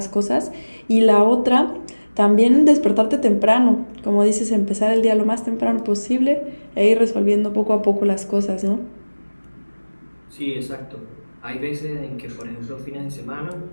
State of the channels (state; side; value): inverted; both; correlation -1.00